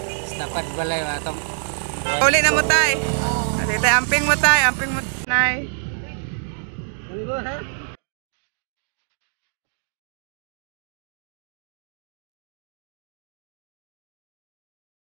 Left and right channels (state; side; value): silent; left; digital silence